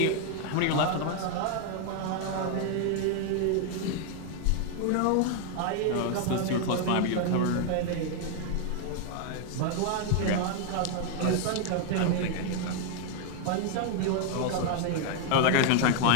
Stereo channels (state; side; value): different; both; correlation 0.00